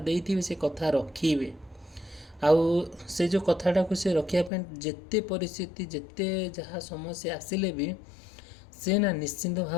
से कथा रखिबे आउ से जो कथाटा को से रखिया जेते परिस्थिति जेते जहाँ समस्या आसिले भी से ना निश्चिंत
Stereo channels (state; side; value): drops out; right; at 4.5 s